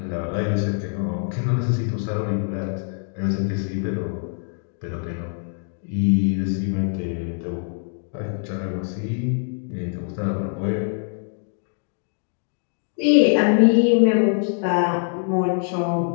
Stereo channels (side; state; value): right; silent; 57 dB below the other